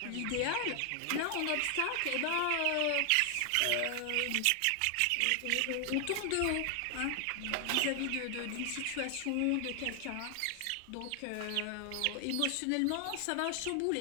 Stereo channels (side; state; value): both; different; correlation 0.00